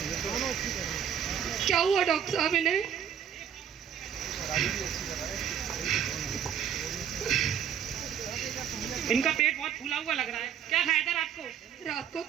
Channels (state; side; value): quieter; left; 8.7 dB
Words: क्या हुआ डॉक्टर साहब इन्हें? इनका पेट बहुत फूला हुआ लग रहा है। क्या खाया था रात को? रात को